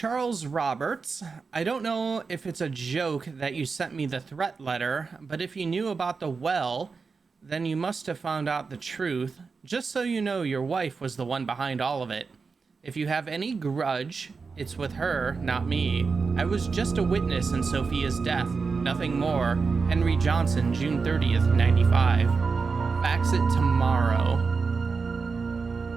Roberts. I don't know if it's a joke that you sent me the threat letter, but if you knew about the well, then you must have found out the truth. Just so you know, your wife was the one behind all of it. If you have any grudge, it's with her, not me. I was just a witness in Sophia's death, nothing more. Henry Johnson, June 30th, 95. Fax it tomorrow.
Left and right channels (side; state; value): left; quieter; 4.8 dB